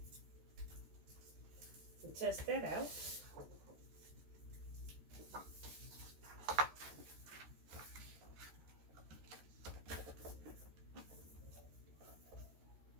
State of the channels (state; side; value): late; left; 13 ms